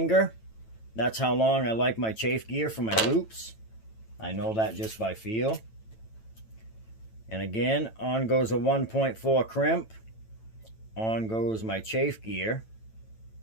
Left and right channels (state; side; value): late; right; 9.0 ms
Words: That's how long I like my chafe gear for my loops. I know that just by feel. And again, on goes a 1.4 crimp. On goes my chafe gear.